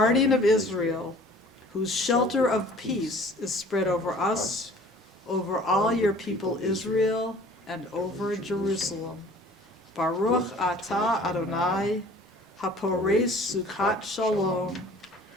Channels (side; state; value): both; normal; correlation 0.49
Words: of Israel, whose shelter of peace is spread over us, over all your people Israel, and over Jerusalem. Baruch atah Adonai, hapores sukkot shalom,